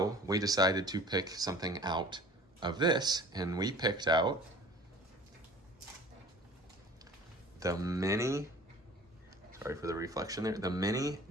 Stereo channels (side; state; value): both; normal; correlation 0.46